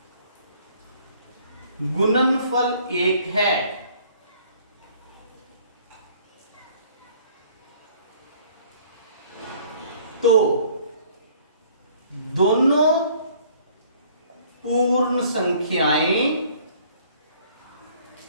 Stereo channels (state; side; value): inverted; both; correlation -0.57